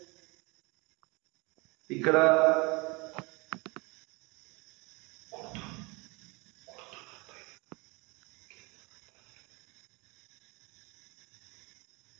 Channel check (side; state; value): left; quieter; 26.9 dB